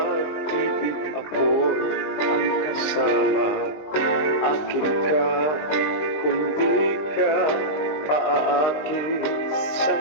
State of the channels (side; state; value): right; late; 20 ms